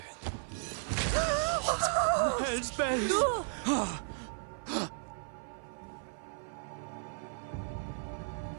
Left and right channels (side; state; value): left; silent; 55 dB below the other